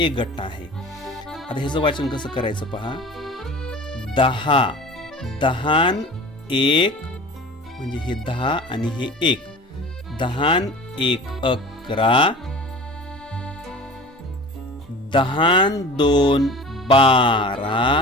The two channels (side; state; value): both; normal; correlation 0.39